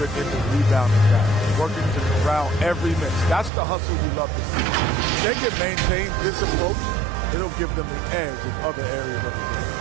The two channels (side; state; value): left; drops out; at 3.5 s